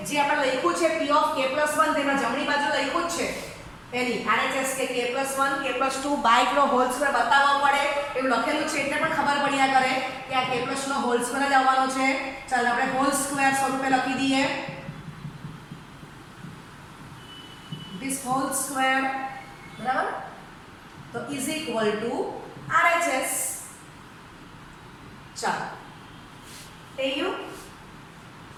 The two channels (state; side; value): identical; both; correlation 1.00